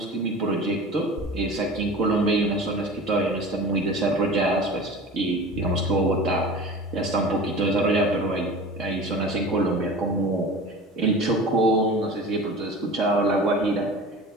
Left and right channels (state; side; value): normal; both; correlation 0.37